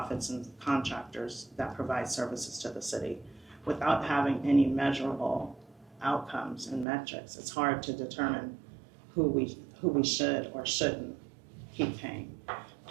and contractors that provide services to the city. Without having any measurable outcomes and metrics, it's hard to determine who we should or shouldn't keep paying.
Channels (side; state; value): left; drops out; at 6.9 s